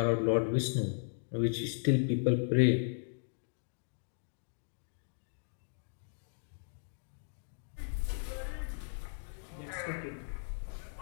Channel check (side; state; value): right; silent; digital silence